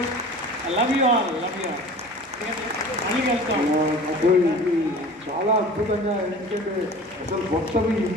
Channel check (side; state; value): both; normal; correlation 0.41